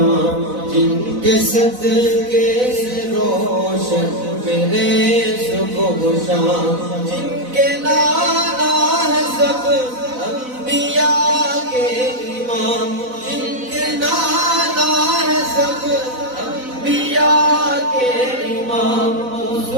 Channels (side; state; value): left; late; 4.0 ms